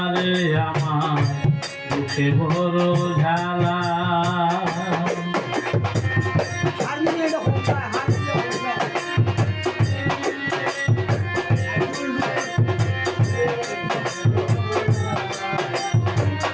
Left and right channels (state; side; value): identical; both; correlation 1.00